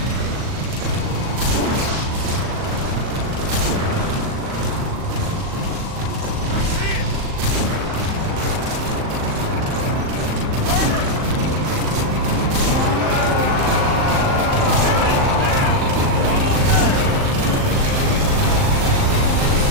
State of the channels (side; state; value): left; late; 39 ms